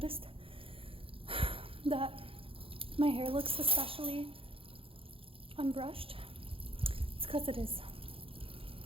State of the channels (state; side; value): late; left; 0.27 ms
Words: that my hair looks especially unbrushed. It's because it is.